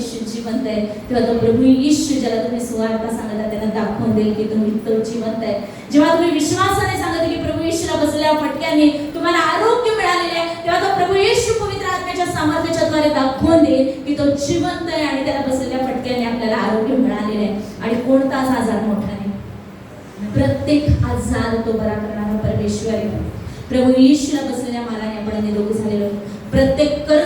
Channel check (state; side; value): identical; both; correlation 1.00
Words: जिवंत आहे, तेव्हा तो प्रभू येशू ज्याला तुम्ही सुवार्ता सांगत आहे त्यांना दाखवून देईल की तुम्ही तो जिवंत आहे. जेव्हा तुम्ही विश्वासाने सांगत की प्रभू येशूला बसलेल्या फटक्याने तुम्हाला आरोग्य मिळालेले आहे, तेव्हा तो प्रभू येशू पवित्र आत्म्याच्या सामर्थ्याच्या द्वारे दाखवून देईल की तो जिवंत आहे आणि त्याला बसलेल्या फटक्याने आपल्याला आरोग्य मिळालेले आहे. आणि कोणताच आजार मोठा नाही, प्रत्येक आजार तो बरा करणारा परमेश्वर आहे. प्रभू येशूला बसलेल्या माराने आपण निरोगी झालेलो. प्रत्येक